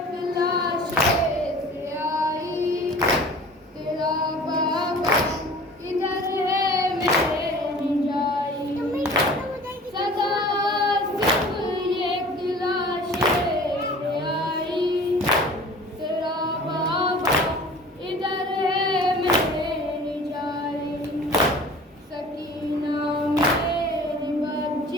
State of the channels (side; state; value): both; normal; correlation 0.44